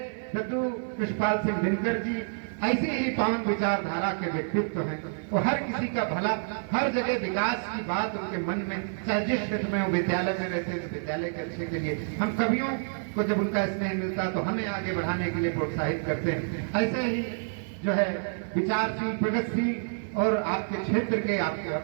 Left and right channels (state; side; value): silent; left; 59 dB below the other